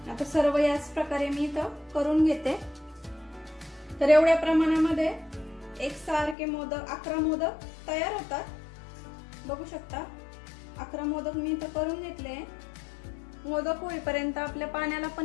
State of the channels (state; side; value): drops out; right; at 6.4 s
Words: आता सर्व याच प्रकारे मी इथं करून घेते। तर एवढ्या प्रमाणामध्ये एकसारखे मोदक 11 मोदक तयार होतात। बघू शकता 11 मोदक मी इथं करून घेतले। मोदक होईपर्यंत आपल्या पाण्याला